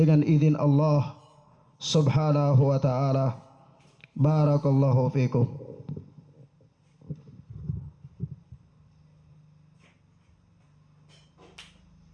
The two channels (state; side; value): identical; both; correlation 1.00